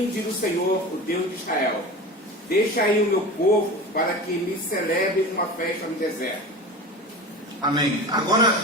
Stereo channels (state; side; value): normal; both; correlation 0.32